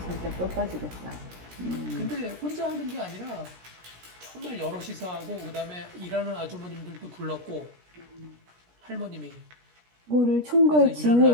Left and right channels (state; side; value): late; left; 17 ms